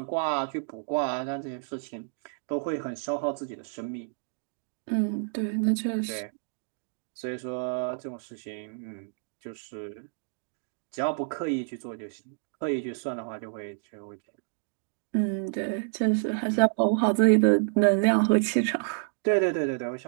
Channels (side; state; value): left; silent; digital silence